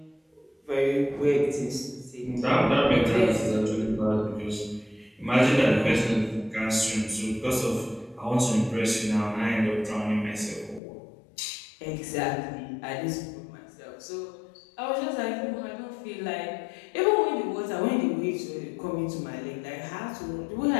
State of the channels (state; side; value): drops out; right; at 10.8 s